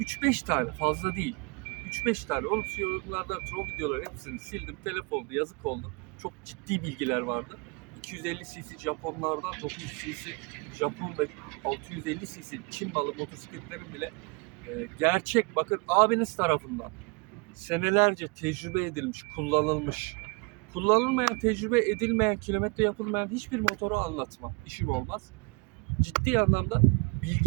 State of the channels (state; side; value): quieter; left; 30.3 dB